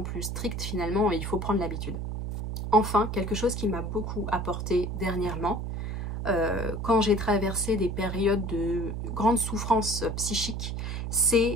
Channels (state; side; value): noise; right; hum, 4 dB below the sound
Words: plus strictes, finalement, il faut prendre l'habitude. Enfin, quelque chose qui m'a beaucoup apporté dernièrement, quand j'ai traversé des périodes de grande souffrance psychique,